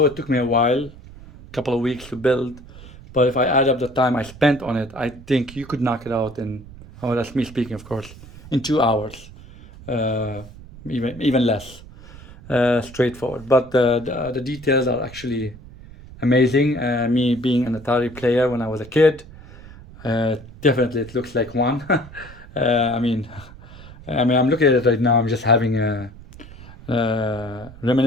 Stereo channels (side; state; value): right; noise; rumble, 18 dB below the sound